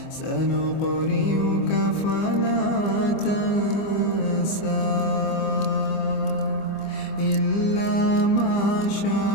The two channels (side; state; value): right; late; 25 ms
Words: سنقرئك فلا تنسى إلا ما